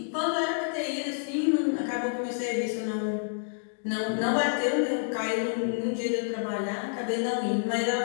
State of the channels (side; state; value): right; silent; digital silence